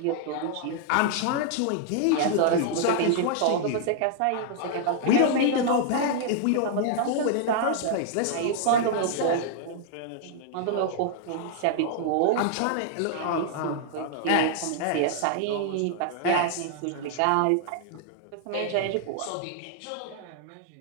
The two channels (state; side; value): different; both; correlation 0.00